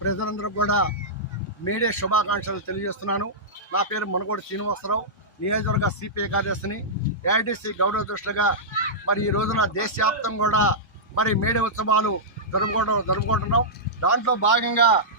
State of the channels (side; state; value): both; normal; correlation -0.13